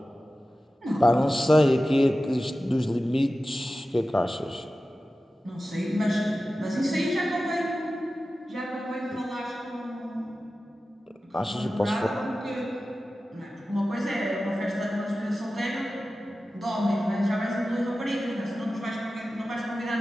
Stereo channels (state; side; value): normal; both; correlation 0.95